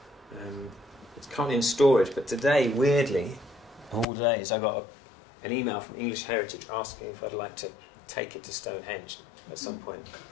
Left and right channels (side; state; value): right; drops out; at 4.0 s